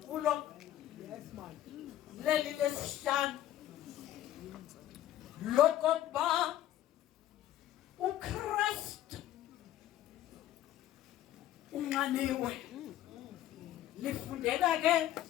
leli lesihlanu lokokuba uKristu unxaniwe. Lifundeka ke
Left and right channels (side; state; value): right; quieter; 12.8 dB